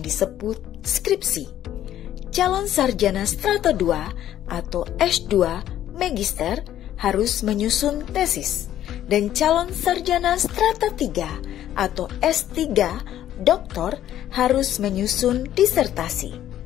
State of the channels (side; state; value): right; quieter; 11.9 dB